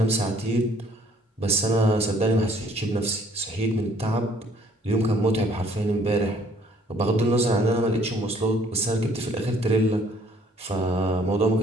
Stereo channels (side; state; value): both; normal; correlation 0.61